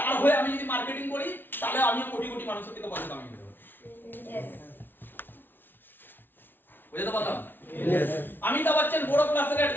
হয়ে আমি যদি মার্কেটিং করি তাহলে আমিও কোটি কোটি মানুষের থেকে পয়সা কামিয়ে দেবো। বুঝতে পারলাম? অমিতাভ বচ্চন বড় ক্লাসের অ্যাড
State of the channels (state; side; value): late; right; 0.097 ms